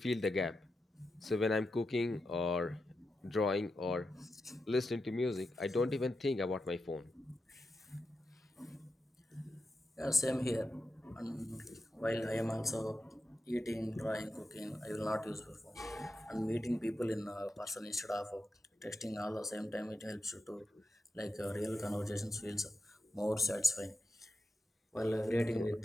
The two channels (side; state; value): both; normal; correlation 0.89